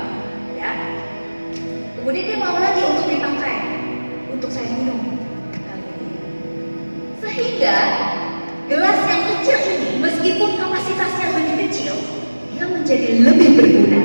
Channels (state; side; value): inverted; both; correlation -1.00